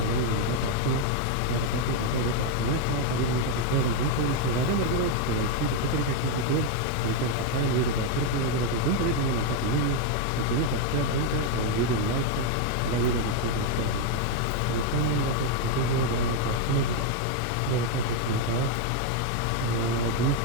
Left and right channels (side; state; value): both; different; correlation 0.01